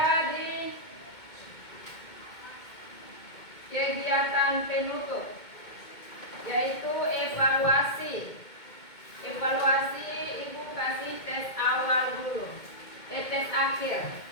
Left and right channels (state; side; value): late; right; 2.2 ms